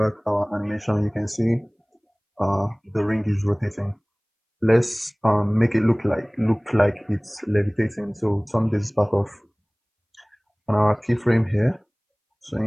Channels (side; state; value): both; identical; correlation 1.00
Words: our animation, you can see the ring is rotating. let's make it look like it's levitating. So turn this back off on our keyframe here. So